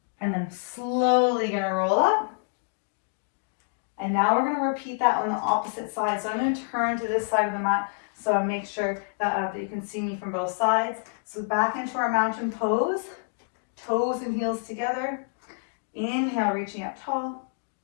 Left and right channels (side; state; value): right; silent; digital silence